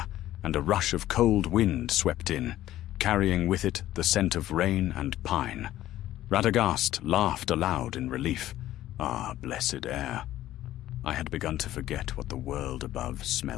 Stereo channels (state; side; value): quieter; right; 13.9 dB